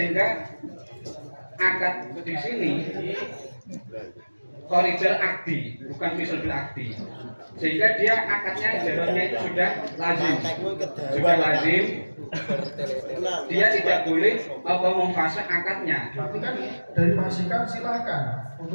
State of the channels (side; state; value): both; inverted; correlation -1.00